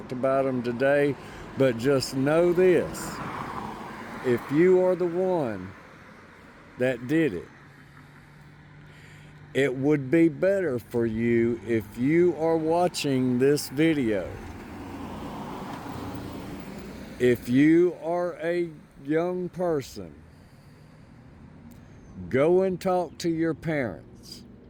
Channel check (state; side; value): identical; both; correlation 1.00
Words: about them today. But just know this, if you are the one that did it, it would be better for you if you are watching this video. If you are a young person, go and talk to your parents.